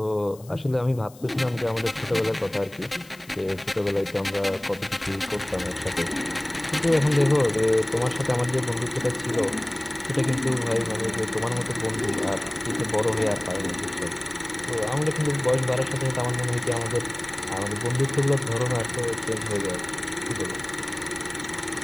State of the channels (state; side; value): noise; left; hiss, 23 dB below the sound